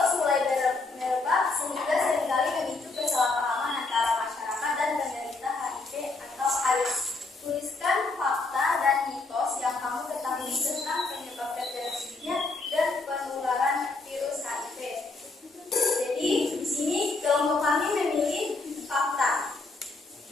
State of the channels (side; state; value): right; quieter; 3.6 dB